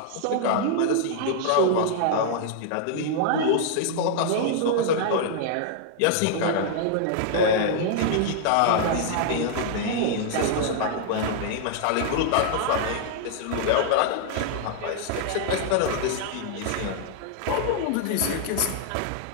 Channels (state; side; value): different; both; correlation -0.01